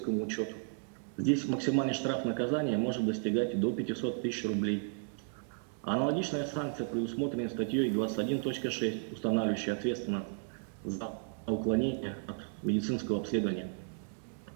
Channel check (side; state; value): left; silent; digital silence